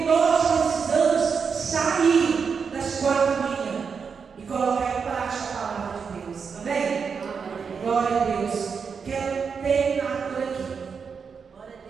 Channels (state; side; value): quieter; left; 5.9 dB